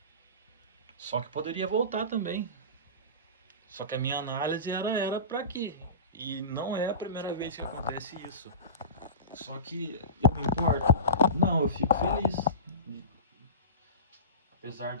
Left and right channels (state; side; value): inverted; both; correlation -0.30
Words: Só que poderia voltar também. Só que a minha análise era para aqui. E não é a primeira vez que acontece isso. Só que eu me importo? Não, eu fico feliz. Apesar